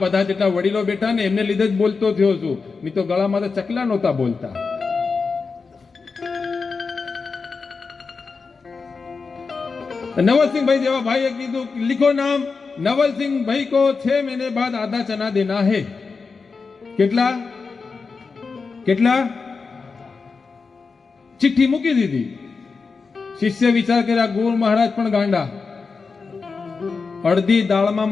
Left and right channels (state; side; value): quieter; right; 4.7 dB